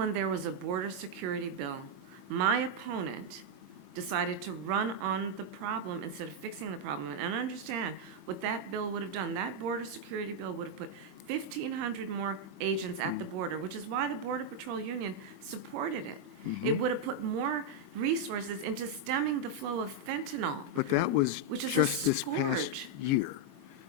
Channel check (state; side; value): late; left; 22 ms